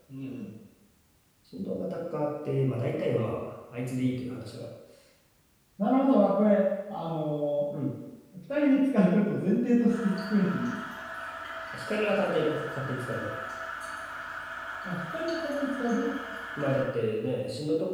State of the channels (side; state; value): both; identical; correlation 1.00